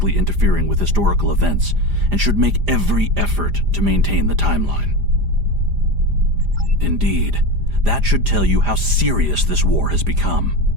interfering with historical events and should make every effort to maintain the timeline. Indeed, that should tell you how serious this war has become.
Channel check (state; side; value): late; left; 4.9 ms